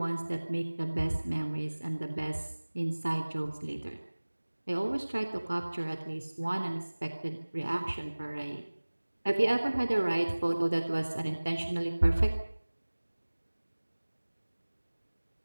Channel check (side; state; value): both; inverted; correlation -1.00